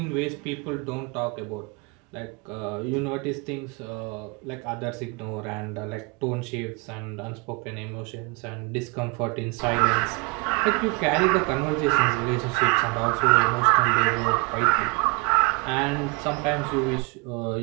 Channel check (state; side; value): quieter; left; 29.6 dB